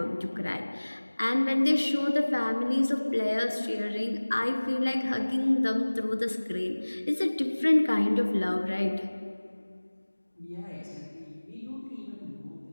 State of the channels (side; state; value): both; inverted; correlation -1.00